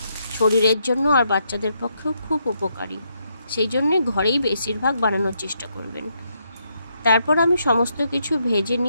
শরীরের জন্য আর বাচ্চাদের পক্ষেও খুব উপকারী। সেই জন্যে ঘরেই বেশিরভাগ বানানোর চেষ্টা করবেন। তারপর আমি সমস্ত কিছু ভেজে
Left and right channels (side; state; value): both; inverted; correlation -0.77